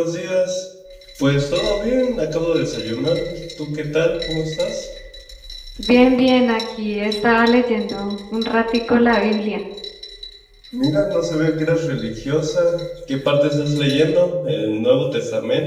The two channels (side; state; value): both; identical; correlation 1.00